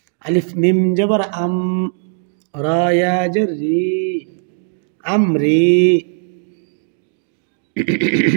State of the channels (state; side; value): silent; left; digital silence